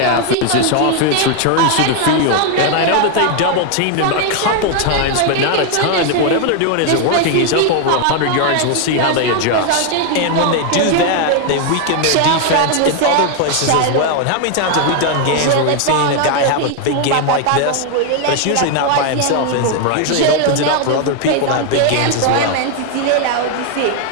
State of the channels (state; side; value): different; both; correlation 0.01